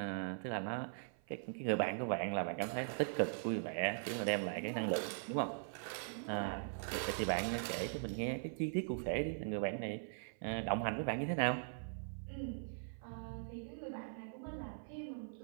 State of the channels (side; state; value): left; silent; 50 dB below the other